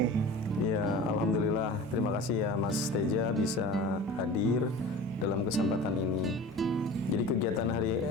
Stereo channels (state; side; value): normal; both; correlation 0.38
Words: Ya, alhamdulillah. Terima kasih ya Mas Teja bisa hadir dalam kesempatan ini. Jadi kegiatan hari